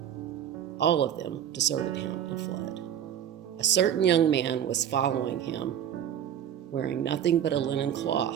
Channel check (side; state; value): left; quieter; 9.8 dB